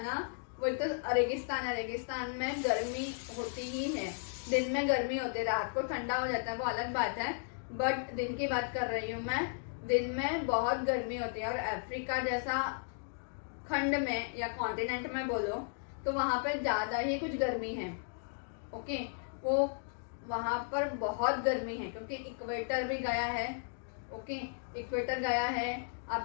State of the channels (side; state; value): right; silent; digital silence